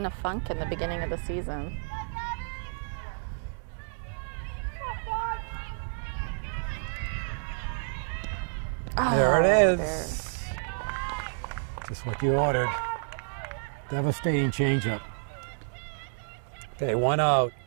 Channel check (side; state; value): left; silent; digital silence